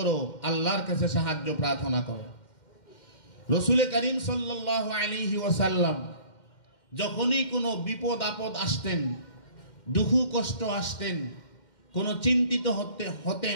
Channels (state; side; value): late; right; 2.1 ms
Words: আল্লাহর কাছে সাহায্য প্রার্থনা করো। রাসূল করিম সাল্লাল্লাহু আলাইহি ওয়াসাল্লাম যখনই কোনো বিপদ আপদ আসতেন, দুঃখ কষ্ট আসতেন, কোনো চিন্তিত